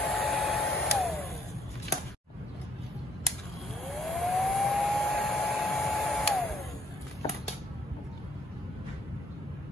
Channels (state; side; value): normal; both; correlation 0.64